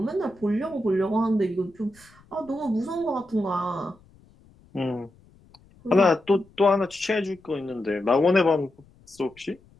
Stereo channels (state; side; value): noise; left; rumble, 28 dB below the sound